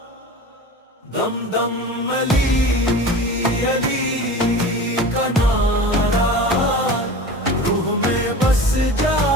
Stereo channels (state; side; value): normal; both; correlation 0.35